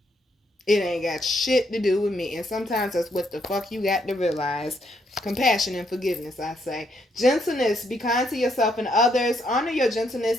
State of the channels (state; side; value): normal; both; correlation 0.74